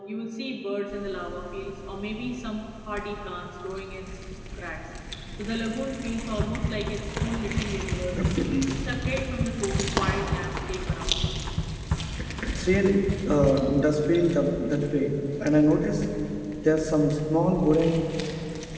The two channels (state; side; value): identical; both; correlation 1.00